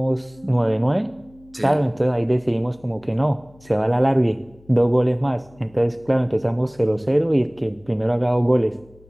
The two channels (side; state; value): left; noise; hum, 27 dB below the sound